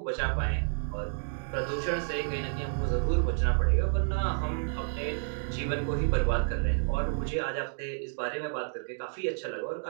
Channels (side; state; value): left; silent; digital silence